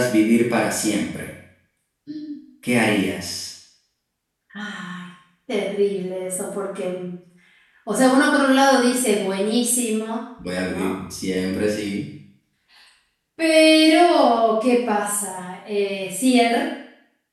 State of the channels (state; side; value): identical; both; correlation 1.00